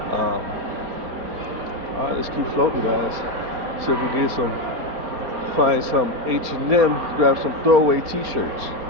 All right, let's keep floating, guys. See if we can find some H&M, grab some throwaway t-shirts.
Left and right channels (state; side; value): late; left; 4.4 ms